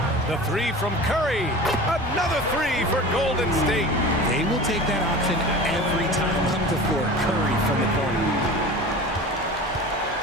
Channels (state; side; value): normal; both; correlation 0.36